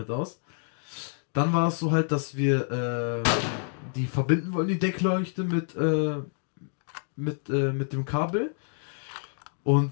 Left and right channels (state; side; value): silent; right; 59 dB below the other